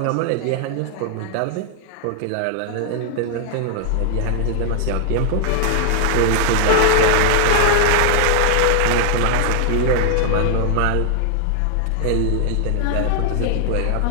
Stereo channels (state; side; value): different; both; correlation 0.00